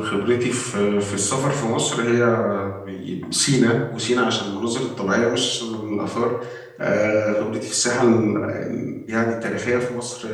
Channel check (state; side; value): identical; both; correlation 1.00